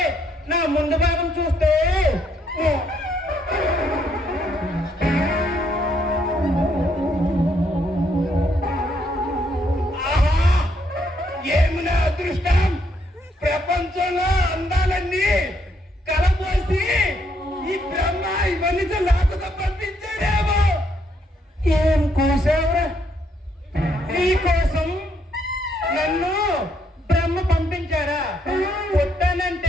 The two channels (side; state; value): both; normal; correlation 0.72